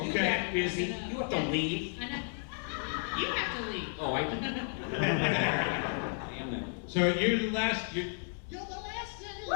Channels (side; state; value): right; silent; 56 dB below the other